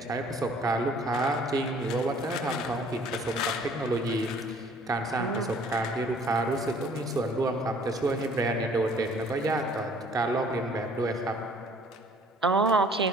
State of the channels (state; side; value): normal; both; correlation 0.56